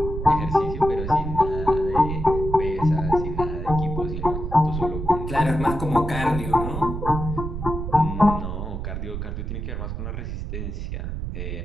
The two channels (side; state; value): right; noise; rumble, 5 dB below the sound